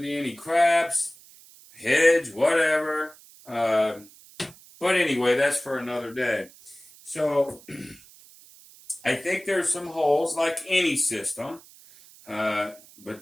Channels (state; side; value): noise; right; hiss, 23 dB below the sound